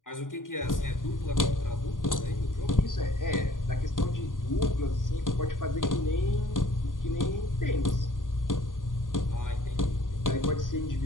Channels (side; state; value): right; late; 0.89 ms